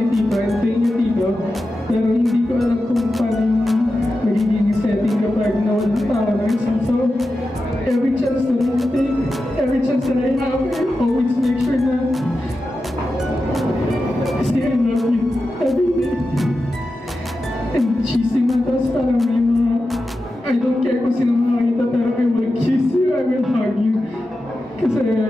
Tito, and thank you, Tito. Pero hindi ko alam kung paano yung magiging setting kapag nawalan pa ako ng isang. So, every chance that I take, every chance that I have, I always make sure na say I love you every day. And cheesy man, tapos parang may mga, I don't care kung sino makakita, pero I will kiss you, I will hug you. Kasi,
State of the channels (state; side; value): normal; both; correlation 0.91